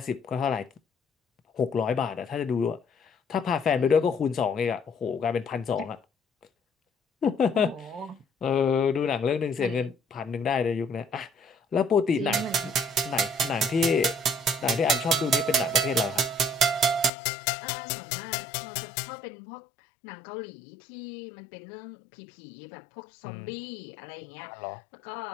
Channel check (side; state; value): right; drops out; at 17.1 s